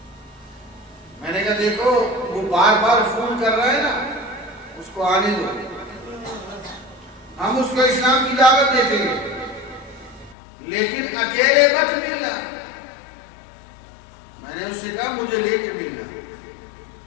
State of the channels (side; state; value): right; drops out; at 10.4 s